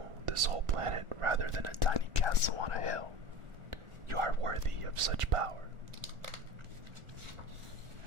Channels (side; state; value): left; late; 1.4 ms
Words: this whole planet rather than a tiny castle on a hill. You are worthy of such power.